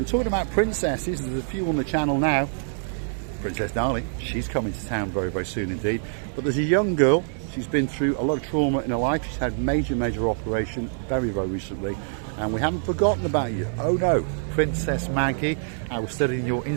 talking about princesses, there's a few on the channel now. Princess Darling, she's coming to town very soon indeed. But there's a young girl, she's been through a lot of trauma in her life. She's had major operation very recently, and we haven't forgotten about you. Oh no, Princess Maggie. I was studying your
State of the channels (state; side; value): silent; left; 62 dB below the other